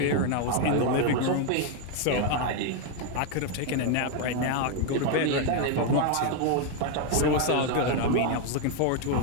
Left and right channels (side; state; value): both; different; correlation 0.01